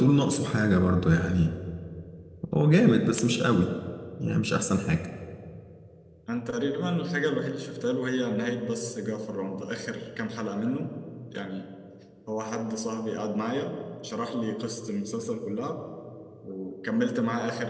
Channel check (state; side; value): identical; both; correlation 1.00